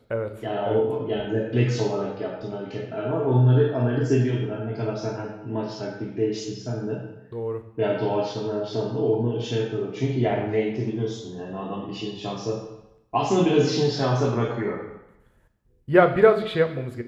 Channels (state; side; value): identical; both; correlation 1.00